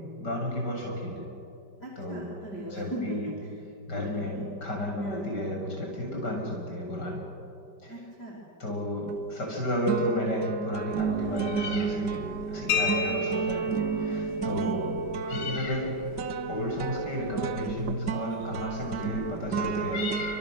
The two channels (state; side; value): late; right; 5.1 ms